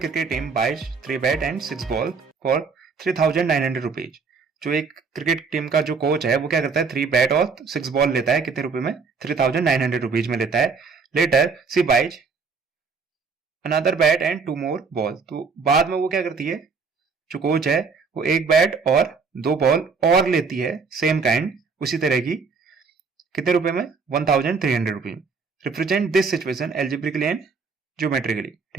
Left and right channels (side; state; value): left; quieter; 5.1 dB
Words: team buys 3 bat and 6 ball for 3,900 rupees. जो एक cricket team का जो coach है वो क्या करता है, 3 बैट और 6 बॉल लेता है, कितने रुपए में, 3,900 रुपीज में लेता है। Later C buys another bat and 2 more ball. तो बाद में वो क्या करती है, जो कोच है वो 1 बैट और 2 बॉल और लेती है, सेम काइंड, उसी तरह की, कितने रुपए में, 1,300 rupees. Represent this situation algebraically and geometrically.